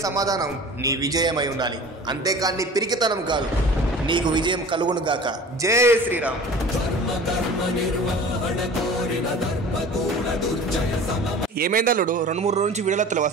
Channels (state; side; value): normal; both; correlation 0.41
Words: సమాధానం నీ విజయమై ఉండాలి, అంతేకాని నీ పిరికితనం కాదు. నీకు విజయం కలుగును గాక. జై శ్రీరామ్. ఏమైందల్లుడు? 2-3 రోజు నుంచి వీడియోలు వస్తలేవు